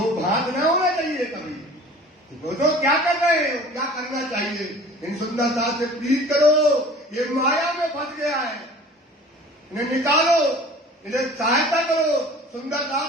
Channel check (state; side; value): normal; both; correlation 0.45